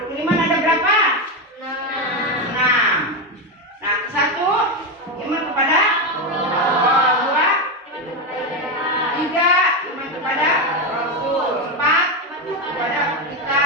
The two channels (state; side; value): normal; both; correlation 0.11